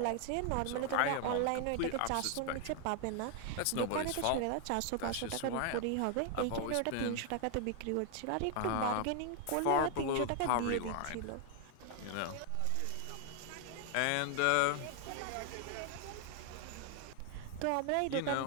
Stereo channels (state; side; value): different; both; correlation 0.00